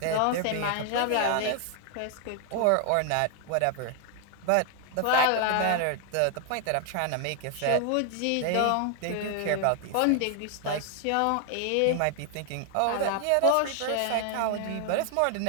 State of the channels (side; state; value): both; different; correlation 0.00